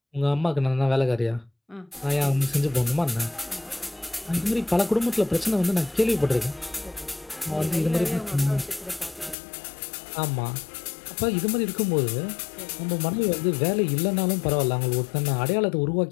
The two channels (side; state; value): right; drops out; at 9.3 s